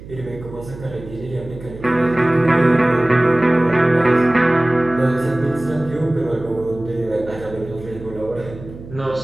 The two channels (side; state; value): right; noise; hum, 15 dB below the sound